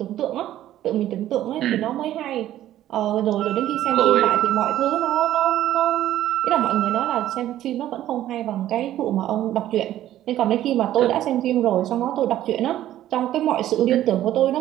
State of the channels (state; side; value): quieter; left; 13.0 dB